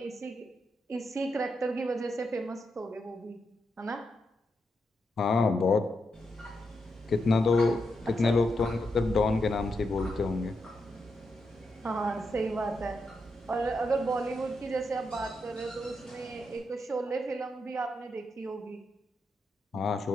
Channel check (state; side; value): normal; both; correlation 0.84